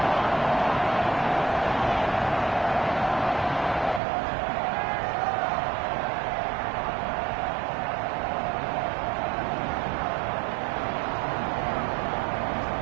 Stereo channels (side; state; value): left; drops out; at 4.0 s